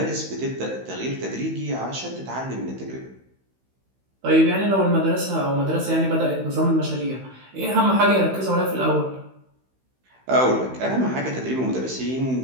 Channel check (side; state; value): left; late; 16 ms